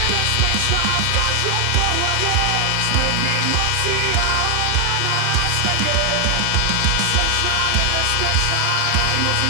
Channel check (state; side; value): different; both; correlation 0.00